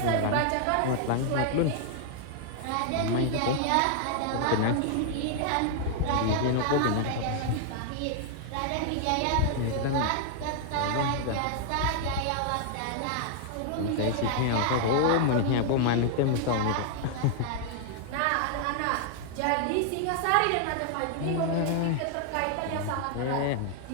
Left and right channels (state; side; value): different; both; correlation 0.00